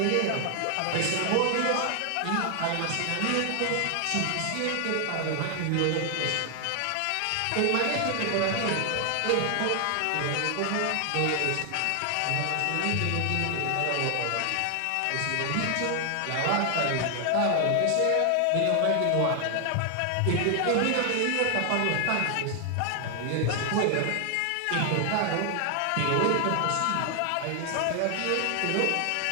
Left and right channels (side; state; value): both; different; correlation 0.00